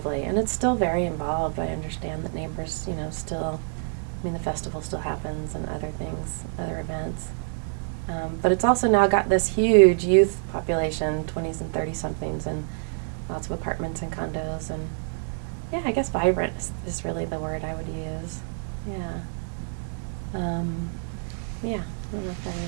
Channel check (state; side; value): silent; left; 57 dB below the other